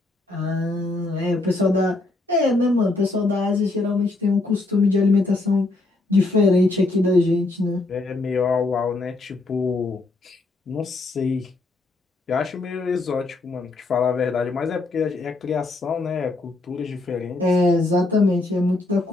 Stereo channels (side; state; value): right; quieter; 3.1 dB